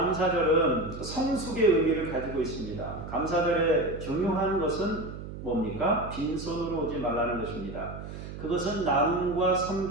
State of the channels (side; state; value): right; noise; hum, 10 dB below the sound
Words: 성숙의 의미를 가지고 있습니다. 감사절의 중요한 것은 뭡니까? 빈손으로 오지 말라는 것입니다. 그것은 나눔과